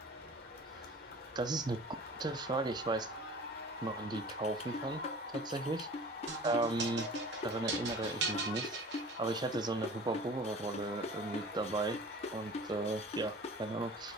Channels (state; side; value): normal; both; correlation 0.43